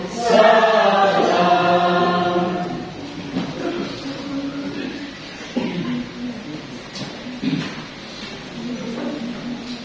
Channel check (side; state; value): both; identical; correlation 1.00